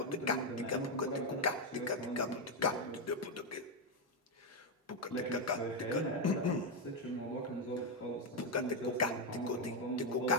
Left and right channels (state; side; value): normal; both; correlation 0.04